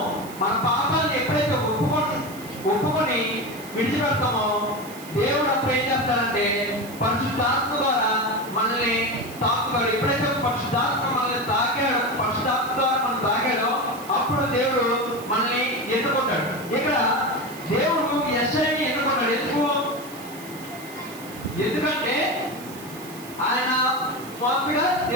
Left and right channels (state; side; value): noise; right; hiss, 17 dB below the sound